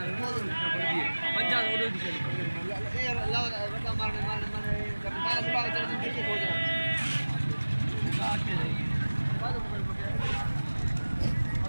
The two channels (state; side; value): inverted; both; correlation -1.00